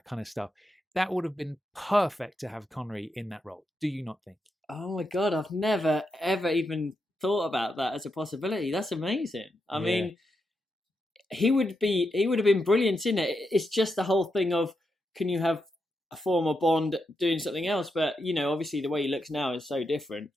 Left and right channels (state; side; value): normal; both; correlation 0.84